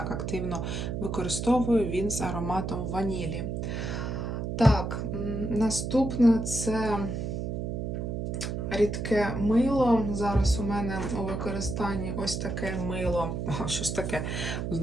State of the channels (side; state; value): right; noise; hum, 3 dB below the sound